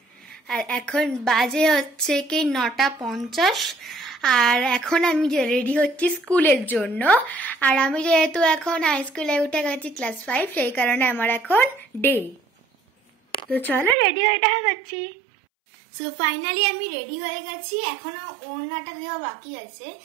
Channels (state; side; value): drops out; left; at 14.0 s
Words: আর এখন বাজে হচ্ছে কি 9:50 আর এখন আমি রেডি হচ্ছি স্কুলের জন্য। আর আমি যেহেতু এখন হাই স্কুলে উঠে গেছি ক্লাস 5, সেই কারণে আমার এখন ডে। তো চলো রেডি হয়ে দেখা করছি। সো ফাইনালি আমি রেডি হয়ে গেছি, এখনো ওড়নাটা দেওয়া বাকি আছে।